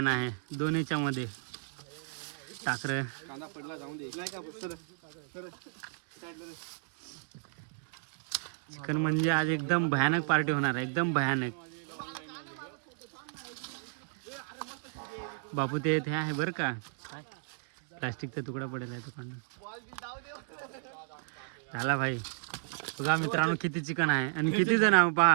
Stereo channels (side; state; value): left; silent; digital silence